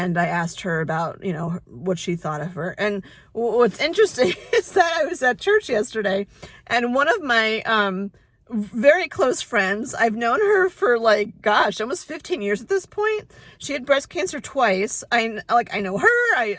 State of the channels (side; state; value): both; identical; correlation 1.00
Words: I asked her about, you know, what she thought of her. And what's interesting is that I was at church yesterday, and one of my very close friends, I've known her for like, gosh, almost 15 years at this point. She had breast cancer twice. I know her,